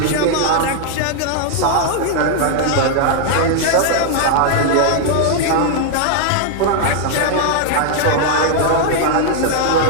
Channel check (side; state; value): both; different; correlation 0.00